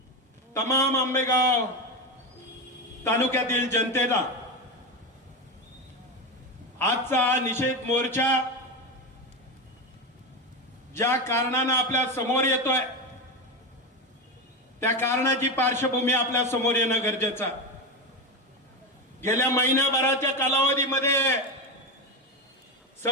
तमाम आंबेगाव तालुक्यातील जनतेला आजचा निषेध मोर्चा ज्या कारणाने आपल्या समोर येतोय त्या कारणाची पार्श्वभूमी आपल्या समोर येणं गरजेचं आहे। गेल्या महिनाभराच्या कालावधीमध्ये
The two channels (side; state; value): both; normal; correlation 0.17